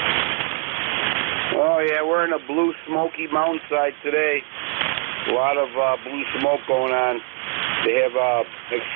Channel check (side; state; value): left; quieter; 36.6 dB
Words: Oh, yeah, we're in a blue smoky mountainside today. A lot of blue smoke going on. They have